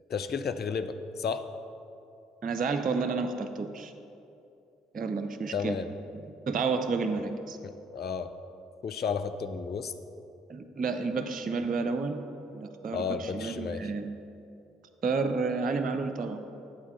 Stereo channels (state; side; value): normal; both; correlation 0.60